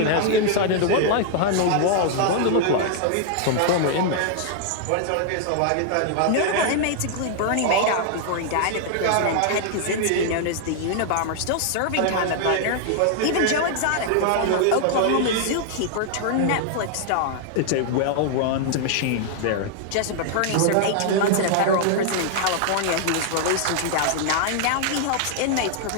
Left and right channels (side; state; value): both; different; correlation -0.01